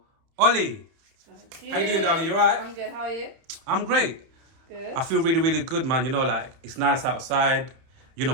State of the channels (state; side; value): late; left; 30 ms